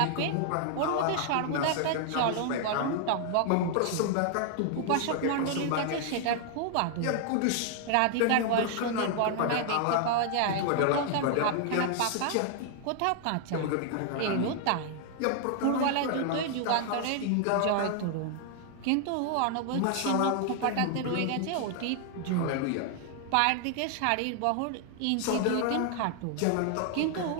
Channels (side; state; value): both; different; correlation 0.00